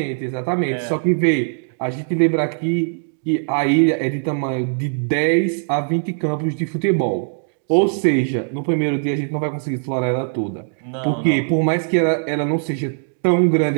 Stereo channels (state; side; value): silent; left; digital silence